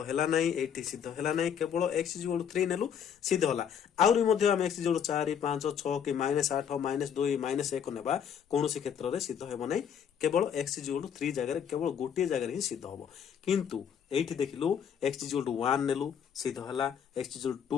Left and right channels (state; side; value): quieter; right; 8.1 dB